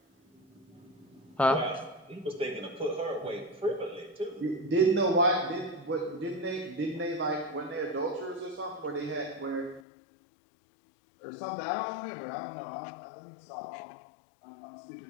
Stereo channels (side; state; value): right; drops out; at 9.8 s